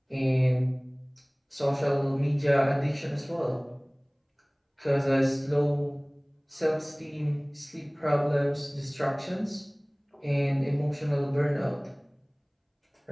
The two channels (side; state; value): both; identical; correlation 1.00